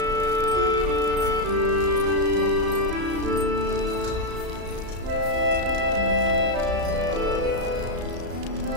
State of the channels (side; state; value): left; late; 34 ms